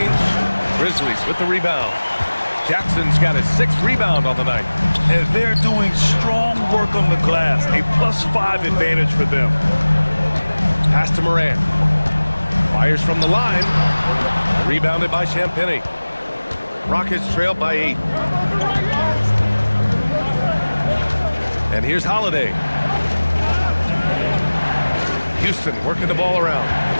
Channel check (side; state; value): both; inverted; correlation -1.00